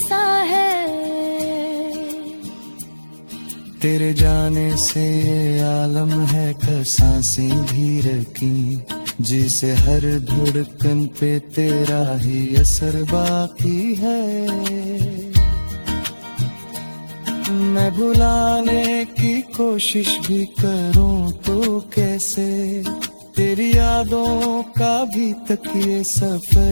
है। तेरे जाने से ये आलम है का सांसें भी रखी, जिसे हर धड़कन पे तेरा ही असर बाकी है। मैं भुलाने की कोशिश भी करूं तो कैसे, तेरी यादों का भी तक ये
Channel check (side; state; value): both; inverted; correlation -1.00